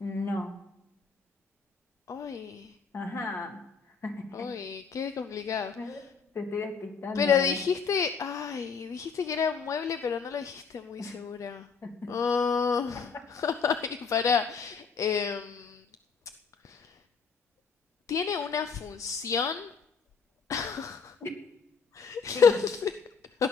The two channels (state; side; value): quieter; right; 5.5 dB